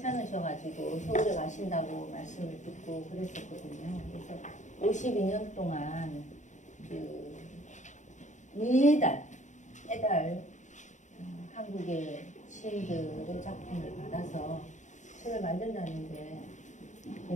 서울에 가신다고 말씀을 듣고 그랬었거든요. 그래서 52년 동안 매달 한국의 시인들의 작품을 받아서 책을 만든다는데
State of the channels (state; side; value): late; right; 0.35 ms